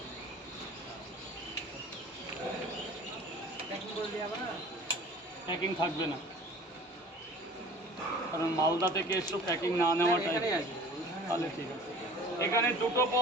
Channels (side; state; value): both; normal; correlation 0.45